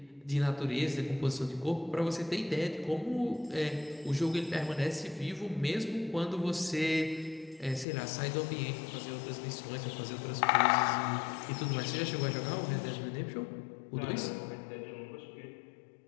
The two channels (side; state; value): right; drops out; at 7.9 s